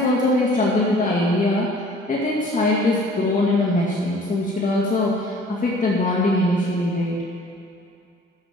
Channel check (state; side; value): normal; both; correlation 0.51